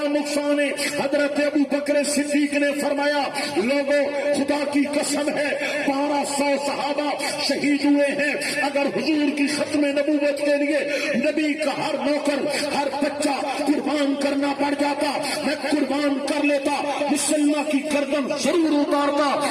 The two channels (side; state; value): both; identical; correlation 1.00